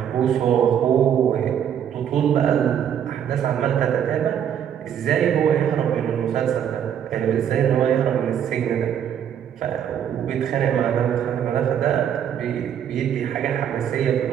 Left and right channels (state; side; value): quieter; left; 9.1 dB